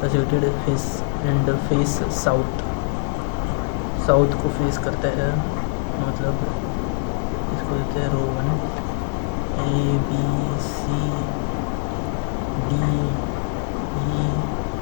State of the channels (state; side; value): silent; right; 64 dB below the other